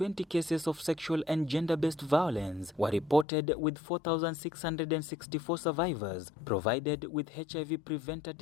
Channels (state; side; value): drops out; right; at 3.2 s